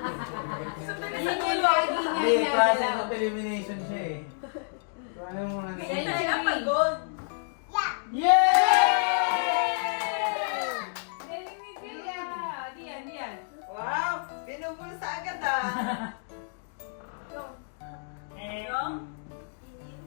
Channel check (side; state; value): right; silent; digital silence